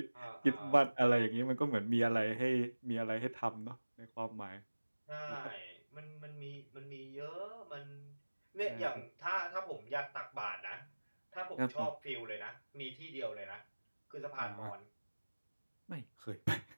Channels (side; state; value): both; inverted; correlation -1.00